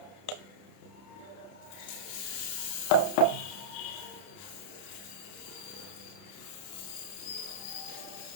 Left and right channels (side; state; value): right; late; 30 ms